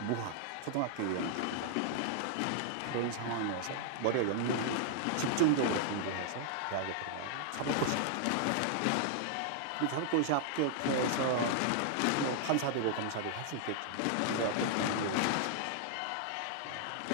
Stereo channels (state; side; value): different; both; correlation 0.00